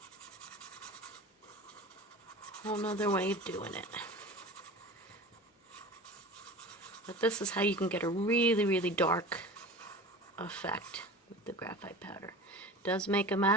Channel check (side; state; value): both; normal; correlation 0.35